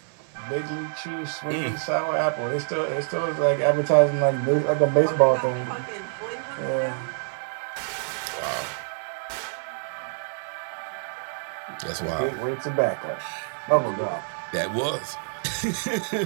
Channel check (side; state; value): left; silent; digital silence